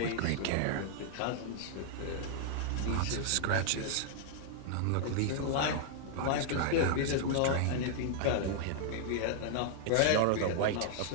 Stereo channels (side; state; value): both; different; correlation -0.01